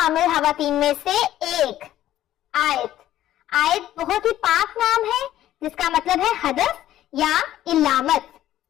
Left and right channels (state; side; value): quieter; right; 13.1 dB